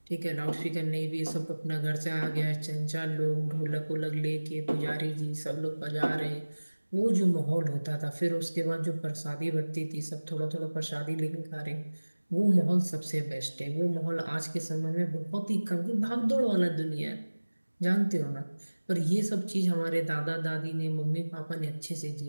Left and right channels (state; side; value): inverted; both; correlation -1.00